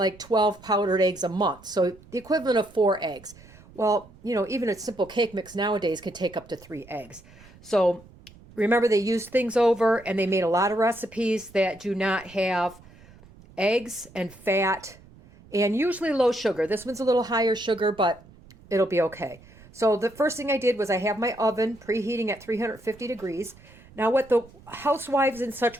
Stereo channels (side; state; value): right; noise; rumble, 23 dB below the sound